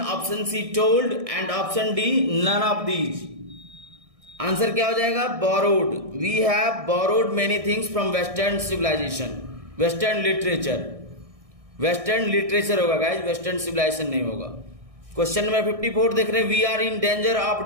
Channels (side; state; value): left; late; 1.6 ms